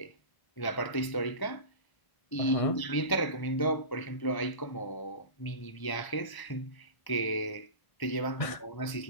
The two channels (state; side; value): late; right; 1.1 ms